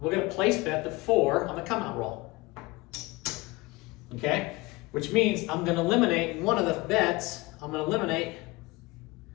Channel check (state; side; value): quieter; right; 22.6 dB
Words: going to place bet the 4 on the come out roll. Okay. Which means I'm going to eliminate one of the bets. I'm going to eliminate